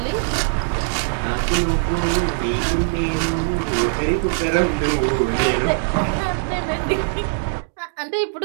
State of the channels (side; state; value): left; silent; digital silence